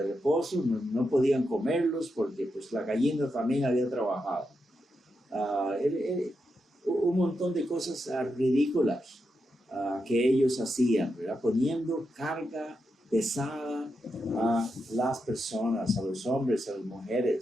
reposo, no podían comerlos porque pues la gallina también había trabajado. Un montón de cosas ridículas que ellos hacían, ¿verdad? Poniendo carga pesada a las personas, a los hombres, a las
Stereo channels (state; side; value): normal; both; correlation 0.86